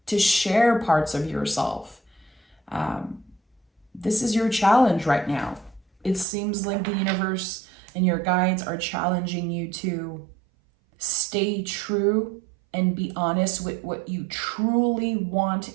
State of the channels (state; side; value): drops out; left; at 6.2 s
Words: to share parts of yourself. This is your challenge right now. It seems like the universe and your guides are challenging you to stay true and be honest with what you truly want